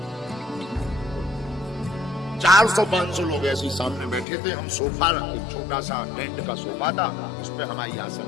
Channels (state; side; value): drops out; right; at 4.2 s